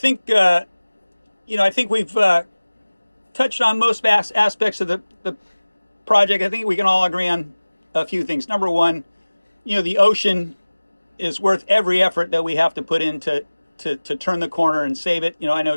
I think we've touched on most aspects of the project. I think we can all agree on a few things. Number one, the ocean is worth every effort that we have to put in to turn the corner and save it. I know,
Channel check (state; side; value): inverted; both; correlation -1.00